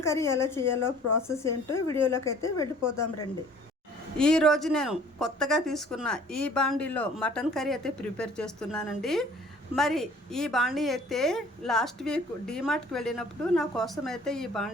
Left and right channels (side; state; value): both; normal; correlation 0.53